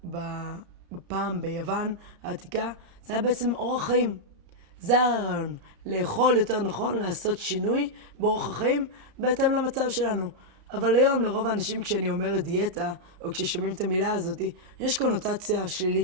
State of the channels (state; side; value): late; left; 32 ms